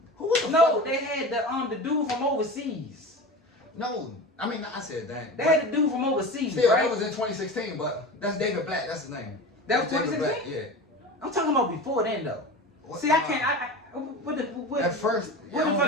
Who was the no, fuck? they had the dude from overseas. No, I mean I said that. They had the dude from overseas, Still, right? that was in 2016, but that's David Black. That's his name. That was David 2016? Black, yeah. I'm talking about before then though. What- See, I can't. What At first, where the I don't fuck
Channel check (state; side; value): normal; both; correlation 0.31